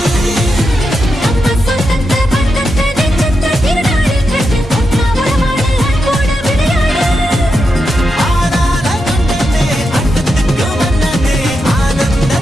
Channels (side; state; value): both; normal; correlation 0.86